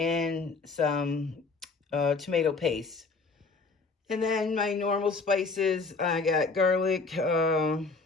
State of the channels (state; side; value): quieter; right; 4.2 dB